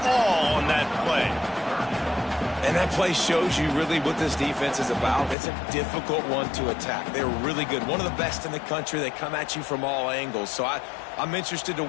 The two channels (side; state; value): right; drops out; at 5.4 s